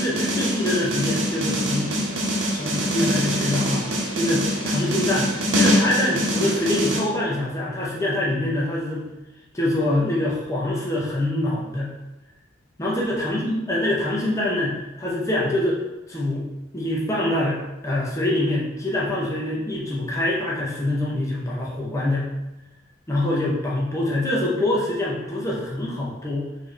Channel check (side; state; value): both; normal; correlation 0.60